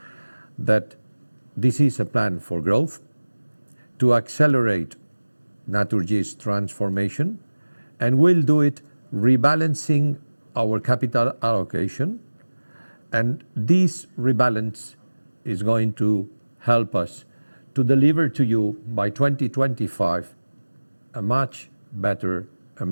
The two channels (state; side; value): inverted; both; correlation -1.00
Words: that this is a plan for growth, to accelerate Naturgy's transformation, and we'll do it rebalancing our capital allocation, and this rebalance is going to help us to deliver to you by 2025 a much better, a